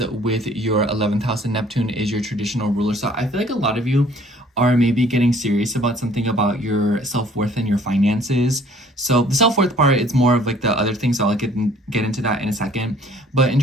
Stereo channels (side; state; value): both; normal; correlation 0.56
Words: with your 11th house, and Neptune is your traditional ruler. So I feel like a lot of you are maybe getting serious about something about your self-worth and your finances. So the self-worth part, it's more of like the other things, so I'll get into that in a second. But in